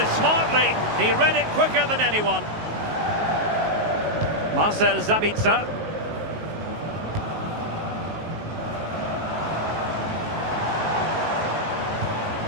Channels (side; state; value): left; late; 19 ms